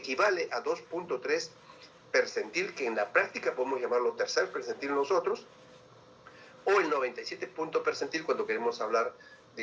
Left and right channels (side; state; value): both; identical; correlation 1.00